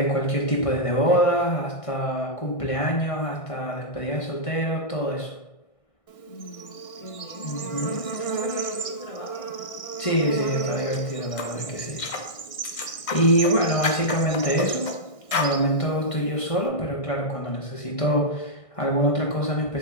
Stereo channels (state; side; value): late; right; 1.6 ms